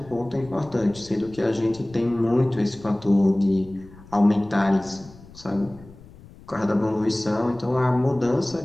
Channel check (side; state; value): left; noise; rumble, 21 dB below the sound